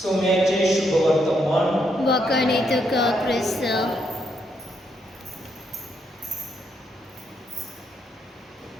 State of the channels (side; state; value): both; normal; correlation 0.77